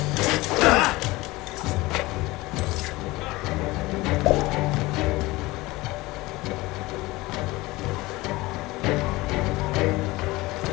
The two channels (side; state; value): right; quieter; 20.6 dB